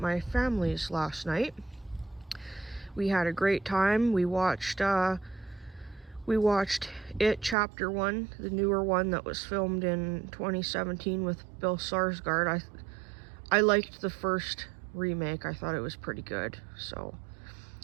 family's last night. We had a great time. We watched It Chapter 1, the newer one that was filmed in 2017 with Bill Skarsgård. I liked the first remake. I thought it was pretty good. So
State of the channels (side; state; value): left; drops out; at 7.6 s